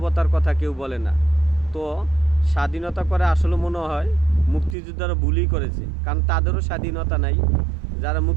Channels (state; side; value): drops out; left; at 4.8 s